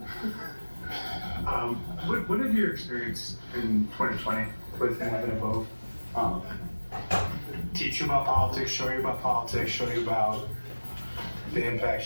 What did your experience in 2020 with having a vote teach you about politics, show you about politics, show you about the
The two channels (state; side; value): inverted; both; correlation -1.00